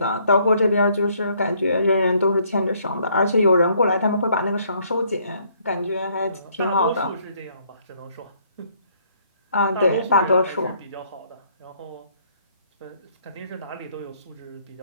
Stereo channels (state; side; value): inverted; both; correlation -0.66